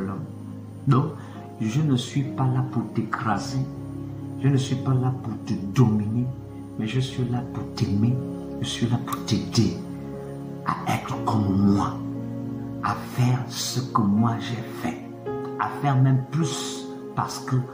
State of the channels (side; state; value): both; identical; correlation 1.00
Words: l'homme. Donc, je ne suis pas là pour t'écraser, je ne suis pas là pour te dominer, mais je suis là pour t'aimer, je suis là pour t'aider à être comme moi, à faire ce que moi j'ai fait, à faire même plus parce que